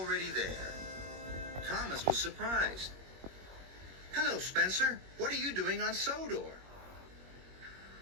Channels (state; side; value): late; left; 21 ms